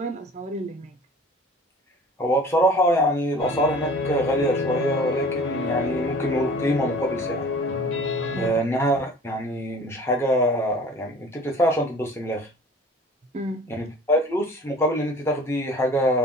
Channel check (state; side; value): normal; both; correlation 0.45